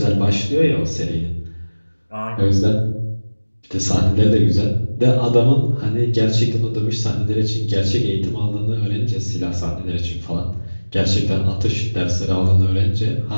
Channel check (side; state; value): both; inverted; correlation -1.00